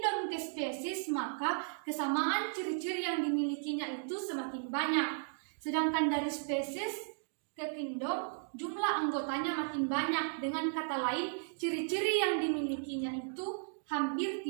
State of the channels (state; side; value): silent; left; digital silence